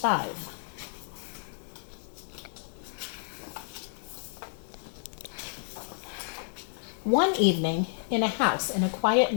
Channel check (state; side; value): silent; right; digital silence